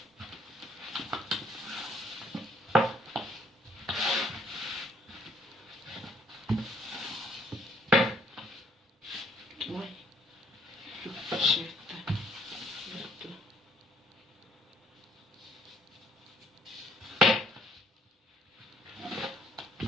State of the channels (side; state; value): both; normal; correlation 0.65